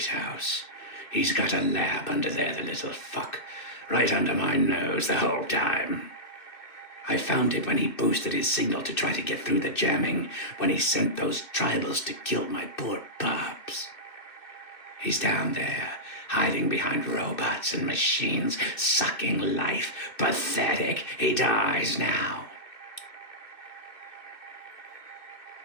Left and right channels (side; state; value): right; late; 2.6 ms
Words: He's got a lab under there, the little fuck. Right under my nose the whole time. I found it when he boosted his signal to try to get through the jamming, when he sent those tribals to kill my poor pups. He's down there, hiding behind robots and machines, sucking life. Pathetic. He dies now.